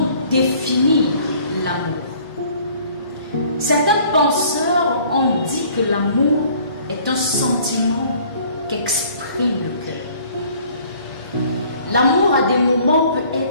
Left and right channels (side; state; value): both; inverted; correlation -0.55